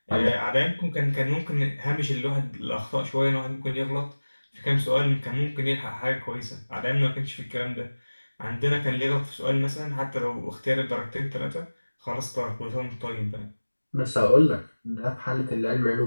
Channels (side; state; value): both; inverted; correlation -1.00